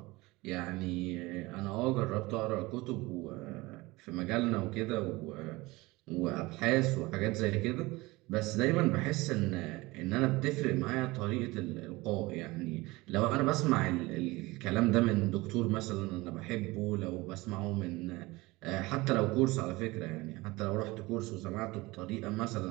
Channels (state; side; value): quieter; left; 21.7 dB